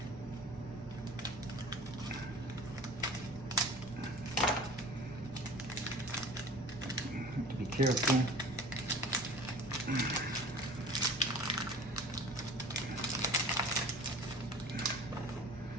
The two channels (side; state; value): both; normal; correlation 0.42